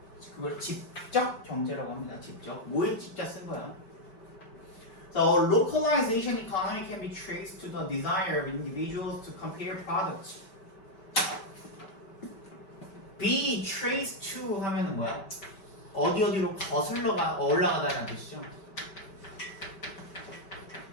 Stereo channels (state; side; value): late; right; 5.1 ms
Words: 그걸 집적 경제라고 합니다. 집적. 모일집자 쓴 거야. So localization economy can be traced to the desire of individuals to compare products. be traced to 하면은 뭐야? 어디로 거슬러 올라가다는 뜻이죠.